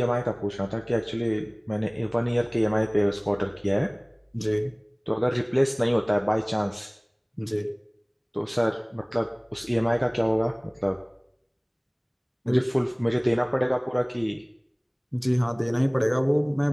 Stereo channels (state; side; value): identical; both; correlation 1.00